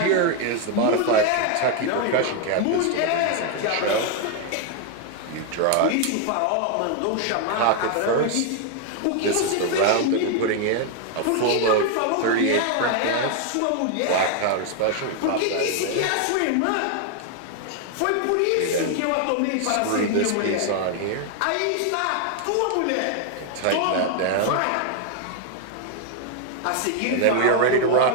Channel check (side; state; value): both; different; correlation 0.01